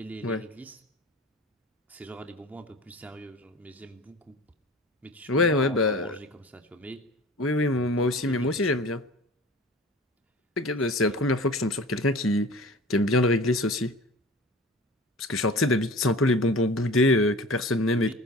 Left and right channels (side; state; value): both; normal; correlation 0.39